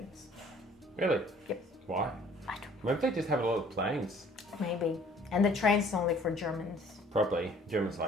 Really? Yep. Why? I don't Maybe they just have a lot of planes. maybe. And the train's only for Germans. Probably. Germans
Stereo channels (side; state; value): both; normal; correlation 0.55